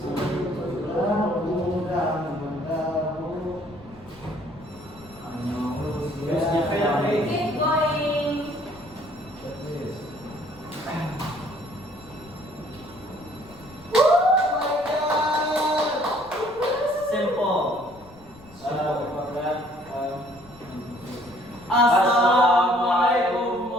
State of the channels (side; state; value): left; noise; rumble, 23 dB below the sound